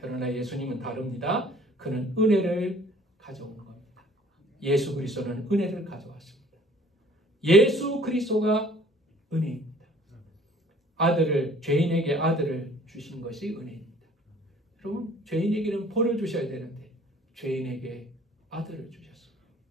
예수님은 다릅니다. 그는 은혜를 가져온 겁니다. 예수 그리스도는 은혜를 가져왔습니다. 예수 그리스도가 은혜입니다. 죄인에게 아들을 주신 것이 은혜입니다. 여러분, 죄인에게는 벌을 주셔야 되는데 죄인에게 아들을 주셨습니다.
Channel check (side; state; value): both; normal; correlation 0.54